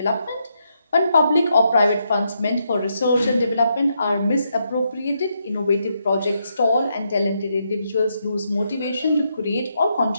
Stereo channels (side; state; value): both; inverted; correlation -0.79